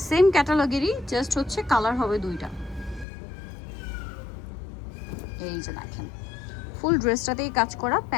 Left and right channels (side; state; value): right; drops out; at 3.1 s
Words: সেম ক্যাটালগেরই, জাস্ট হচ্ছে কালার হবে দুইটা। এই যে দেখেন ফুল ড্রেসটাতেই কাজ করা,